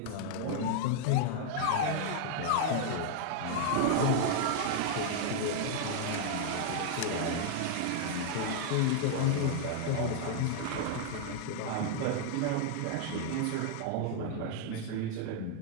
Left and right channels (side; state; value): both; different; correlation 0.00